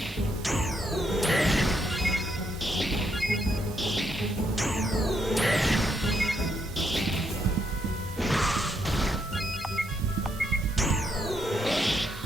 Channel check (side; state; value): both; normal; correlation 0.76